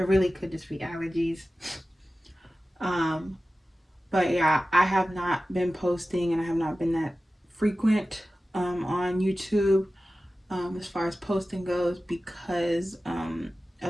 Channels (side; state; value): both; normal; correlation 0.95